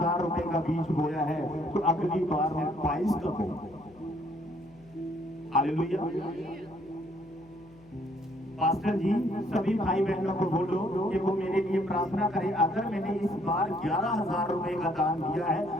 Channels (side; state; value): left; noise; hum, 25 dB below the sound